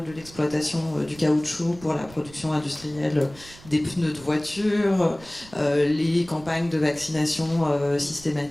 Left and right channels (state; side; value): noise; right; rumble, 20 dB below the sound